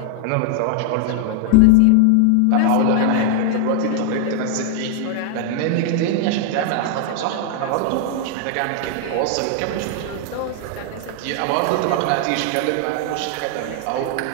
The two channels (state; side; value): different; both; correlation 0.00